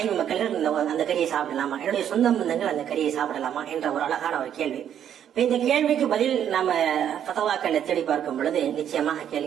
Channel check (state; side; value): quieter; left; 9.6 dB